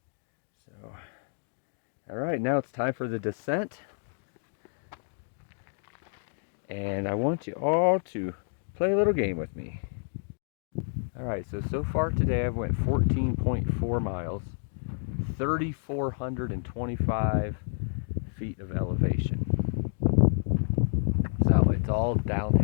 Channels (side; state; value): right; silent; digital silence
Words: So, all right, now it's time for the descent. And I want you all to play a little game with me. Alright, so far today I've went 14.4 miles, 3,425 feet of elevation. So it's all